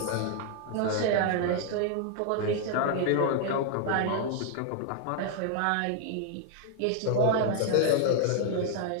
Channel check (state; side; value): different; both; correlation 0.00